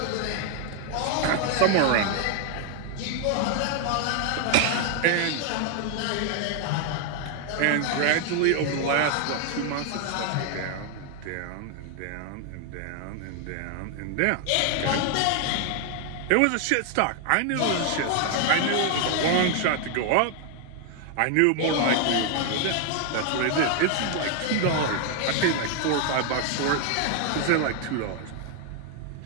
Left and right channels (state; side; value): different; both; correlation 0.00